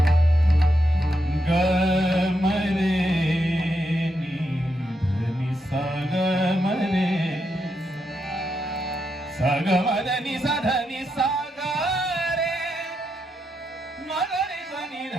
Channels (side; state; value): both; normal; correlation 0.82